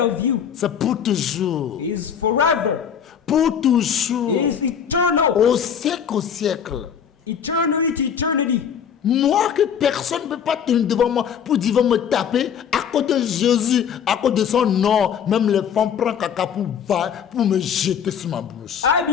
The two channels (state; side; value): quieter; right; 8.0 dB